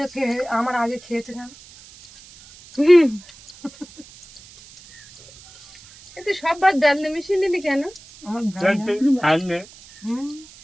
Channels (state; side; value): noise; right; hiss, 22 dB below the sound